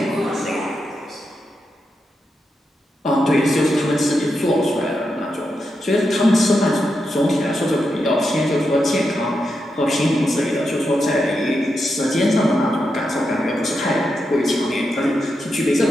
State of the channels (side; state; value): both; normal; correlation 0.86